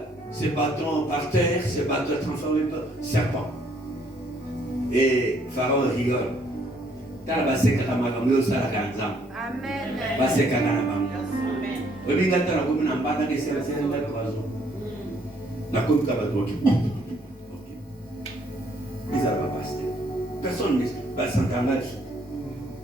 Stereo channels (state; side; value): normal; both; correlation 0.66